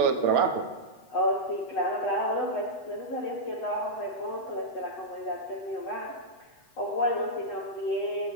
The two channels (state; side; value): late; right; 8.0 ms